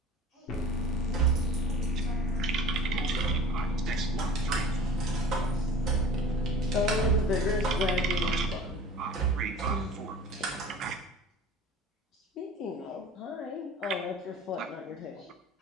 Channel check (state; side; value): normal; both; correlation 0.44